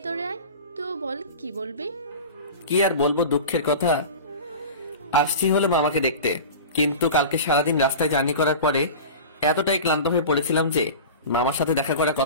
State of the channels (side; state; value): both; inverted; correlation -0.32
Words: আয়। তো বল, কি বলবি? কি আর বলবো, দুঃখের কথা। আসছি হলো মামাকে দেখতে, কিন্তু কালকে সারাদিন রাস্তায় জার্নি করার পরে এতটাই ক্লান্ত হয়ে পড়েছিলাম যে মামার সাথে দেখা করার